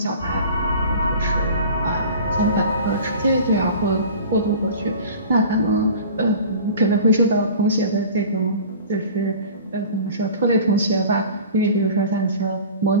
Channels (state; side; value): inverted; both; correlation -0.40